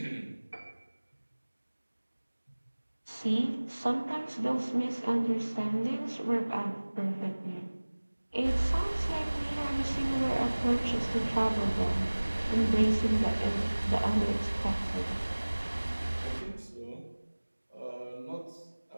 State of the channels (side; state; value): both; inverted; correlation -1.00